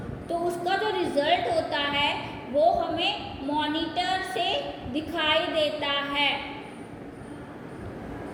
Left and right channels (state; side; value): identical; both; correlation 1.00